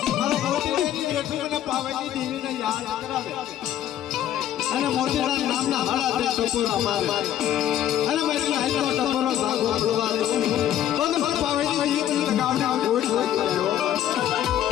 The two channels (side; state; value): right; quieter; 11.5 dB